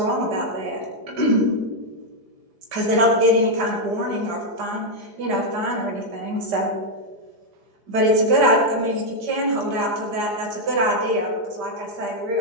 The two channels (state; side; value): late; left; 4.8 ms